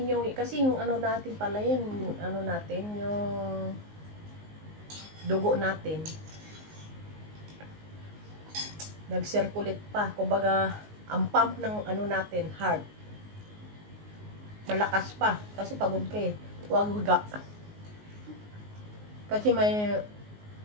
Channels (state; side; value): late; left; 19 ms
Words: Kasi yung ano natin pala yan, ano natin, yung dugo natin. Nag-circulate pa. Kumbaga, ang pump ng ano natin, heart, malakas pa. Kasi pagod ka eh. Huwag higa. Kasi may